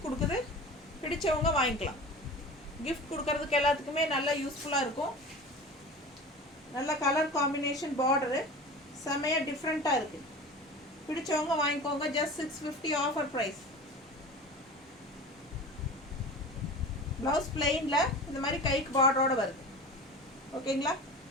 கொடுக்குது. பிடிச்சவங்க வாங்கிக்கலாம். கிஃப்ட் கொடுக்கறதுக்கு எல்லாத்துக்குமே நல்லா யூஸ்ஃபுல்லாக இருக்கும். நல்ல கலர் காம்பினேஷன், பார்டரு செம்மையாக டிஃப்ரெண்ட்டாக இருக்குது. பிடிச்சவங்க வாங்கிக்கோங்க. Just 650 offer price. ப்ளவுஸ் பிளெயினில் இந்த மாதிரி கைக்கு பார்டரோட வருது. ஓகேங்களா?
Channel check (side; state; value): both; normal; correlation 0.35